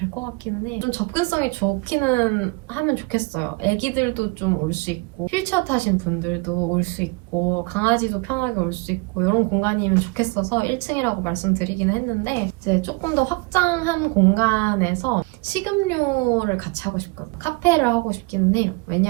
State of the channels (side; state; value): left; quieter; 27.0 dB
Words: 것 같기는 해. 좀 접근성이 좋기는 하면 좋겠어요. 애기들도 좀 올 수 있고 휠체어 타신 분들도 올 수 있고 강아지도 편하게 올 수 있고 이런 공간이면 좋겠어서 1층이라고 말씀드리기는 했는데 이제 조금 더 확장한 공간에서 식음료를 같이 하고 싶거든요. 카페를 하고 싶기는 해요.